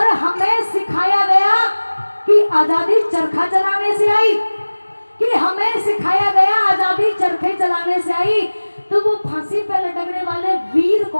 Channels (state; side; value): inverted; both; correlation -1.00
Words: हमें सिखाया गया कि आजादी चरखा चलाने से आई, कि हमें सिखाया गया आजादी चरखे चलाने से आई। तो वो फांसी पर लटकने वाले वीर